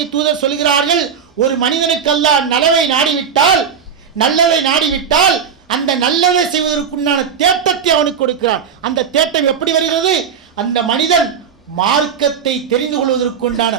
தூதர் சொல்கிறார்கள், ஒரு மனிதனுக்கு அல்லாஹ் நலவை நாடிவிட்டால், நல்லதை நாடிவிட்டால் அந்த நல்லதை செய்வதற்குண்டான தேட்டத்தை அவனுக்கு கொடுக்கிறான். அந்த தேட்டம் எப்படி வருகிறது, அந்த மனிதன் மார்க்கத்தை தெரிந்து கொள்வதற்குண்டான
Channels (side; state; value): left; quieter; 7.1 dB